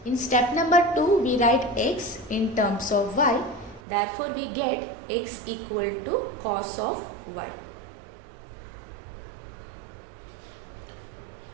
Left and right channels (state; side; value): drops out; left; at 3.8 s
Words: In step number 2, we write x in terms of y, therefore we get x equal to cos of y.